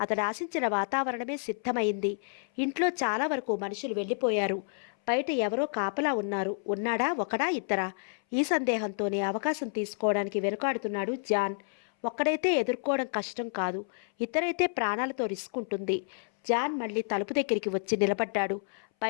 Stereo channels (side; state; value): right; silent; 58 dB below the other